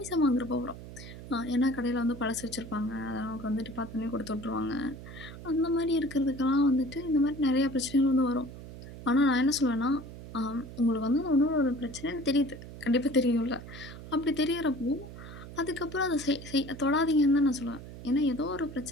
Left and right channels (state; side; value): noise; right; hum, 13 dB below the sound